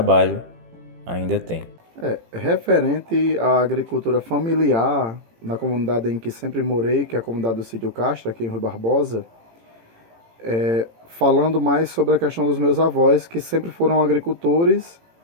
ainda tem. Referente à agricultura familiar, na comunidade em que sempre morei, que é a comunidade do Sítio Castro, aqui em Rui Barbosa, falando mais sobre a questão dos meus avós, que sempre foram agricultores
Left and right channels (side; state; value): left; late; 18 ms